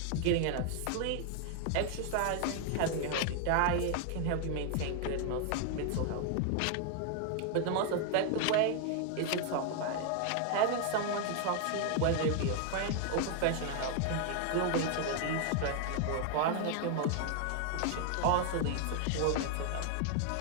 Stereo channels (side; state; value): both; different; correlation 0.00